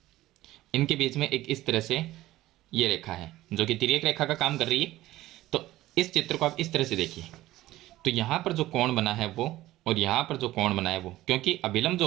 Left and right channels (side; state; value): left; quieter; 16.1 dB